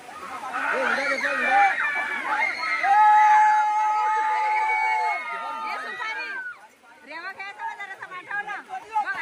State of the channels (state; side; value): identical; both; correlation 1.00